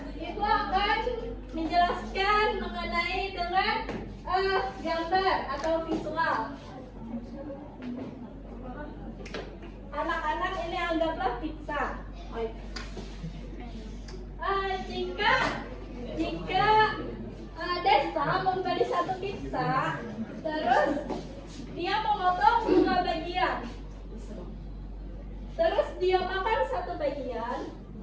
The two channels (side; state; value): both; identical; correlation 1.00